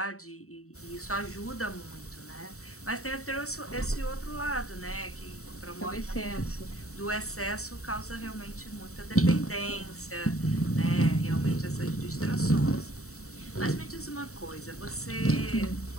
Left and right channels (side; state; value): right; late; 0.64 ms